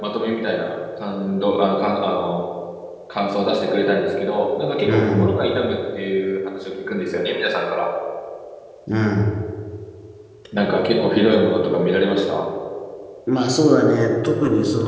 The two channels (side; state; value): both; identical; correlation 1.00